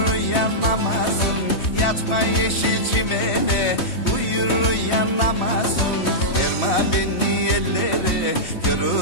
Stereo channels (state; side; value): late; right; 3.2 ms